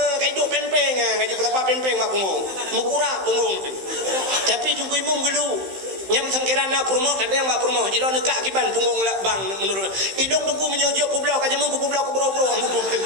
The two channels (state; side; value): late; left; 15 ms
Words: Kai dua pempeng kai jumpa pempeng bak punggung. Mukurak punggung. Tapi ungku imum geluk. Nyam sangkirana purmo kada yang bak purmo jilo nekak kiban punggung lah bang menurut idong tungku menyojok publok kajamu ku publok ku bro